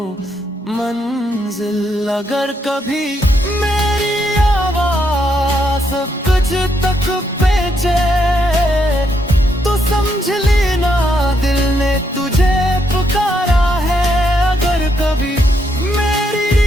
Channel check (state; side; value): normal; both; correlation 0.77